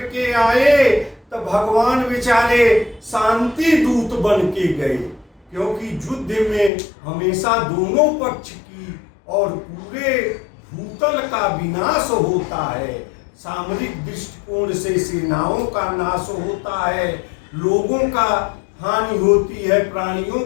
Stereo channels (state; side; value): drops out; right; at 6.7 s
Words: आए, तो भगवान बेचारे शांति दूत बन के गए, क्योंकि युद्ध में हमेशा दोनों पक्ष की और पूरे भूतल का विनाश होता है। सामरिक दृष्टिकोण से सेनाओं का नाश होता है, लोगों का हानि होती है, प्राणियों